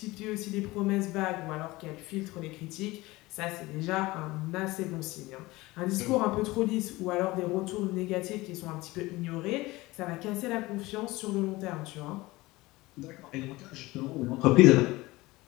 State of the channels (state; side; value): quieter; right; 20.3 dB